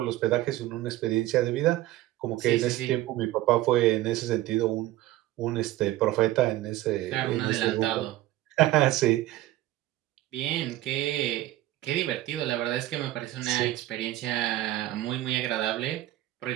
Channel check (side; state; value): left; quieter; 15.7 dB